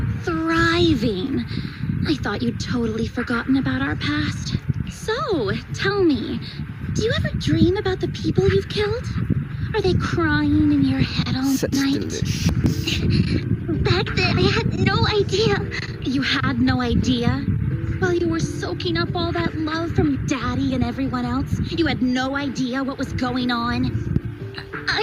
thriving. I thought you'd totally forgotten about our past. So, tell me, do you ever dream about the people you've killed? Are they crying in your head all night? Back then, I had no idea. You had no idea? While you were soaking up all that love from Daddy and everyone else, you had no idea what was going on?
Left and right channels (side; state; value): both; identical; correlation 1.00